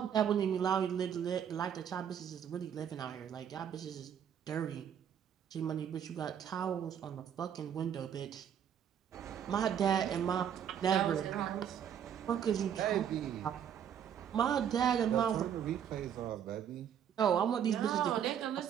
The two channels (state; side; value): quieter; left; 8.9 dB